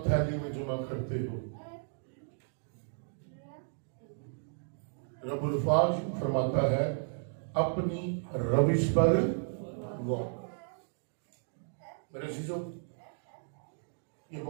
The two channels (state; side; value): silent; left; digital silence